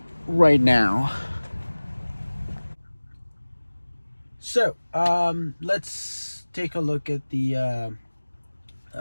right now. So let's take a look at the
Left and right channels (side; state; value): both; inverted; correlation -1.00